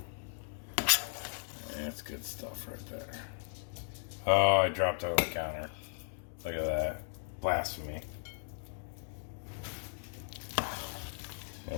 That's good stuff right there. Oh, I dropped it on the counter. Look at that. Blasphemy.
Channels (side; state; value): right; silent; digital silence